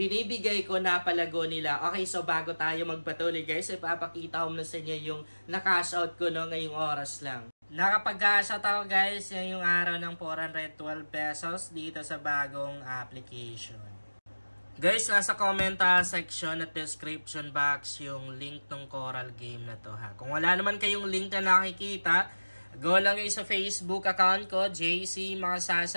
ko na palago nila. Okay, so bago tayo magpatuloy guys, ipapakita ko na sa inyo yung na-cash out ko no, ngayong oras lang. Nakapag-cash out ako guys, yan yung araw ng 412 pesos dito sa bagong application. Guys, nasa comment section at description box yung link ng Coral game na to ha. Kung wala naman kayong link na nakikita, go lang kayo sa Facebook account ko, JC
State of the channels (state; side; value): inverted; both; correlation -1.00